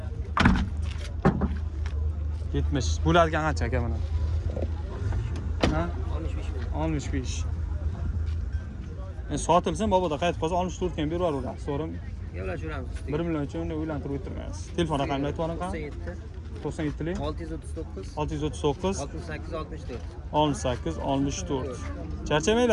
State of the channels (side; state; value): both; identical; correlation 1.00